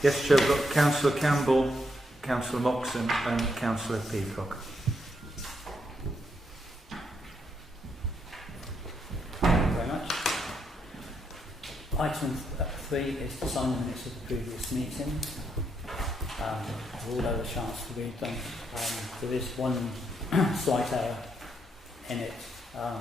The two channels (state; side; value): normal; both; correlation 0.78